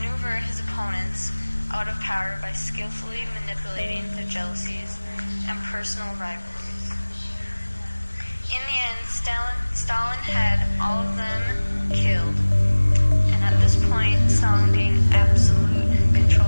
his opponents out of power by skillfully manipulating their jealousies and personal rivalries. In the end, Stalin had all of them killed, and at this point, Stalin gained absolute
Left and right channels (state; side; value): inverted; both; correlation -1.00